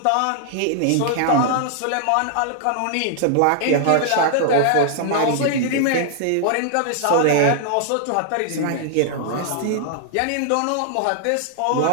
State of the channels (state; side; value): different; both; correlation 0.00